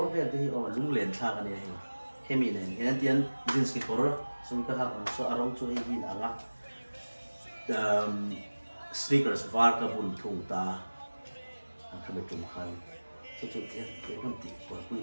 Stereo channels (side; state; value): both; inverted; correlation -1.00